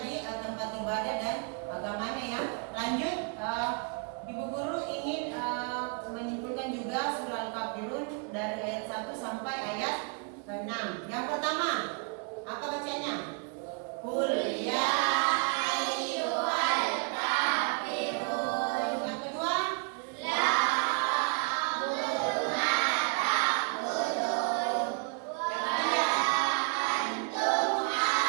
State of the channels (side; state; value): left; quieter; 37.5 dB